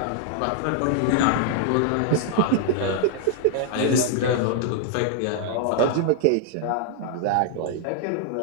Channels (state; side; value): different; both; correlation 0.00